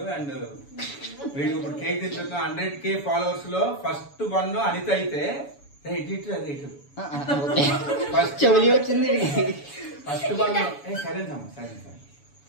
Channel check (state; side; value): late; right; 7.0 ms